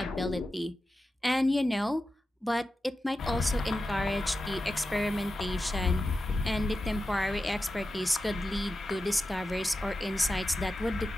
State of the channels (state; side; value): normal; both; correlation 0.92